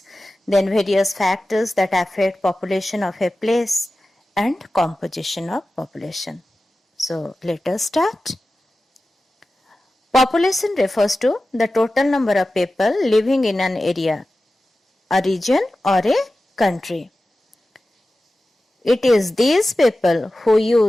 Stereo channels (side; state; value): both; normal; correlation 0.94